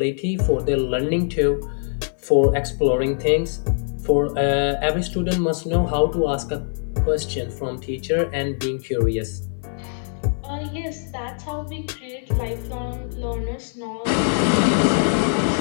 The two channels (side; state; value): right; silent; digital silence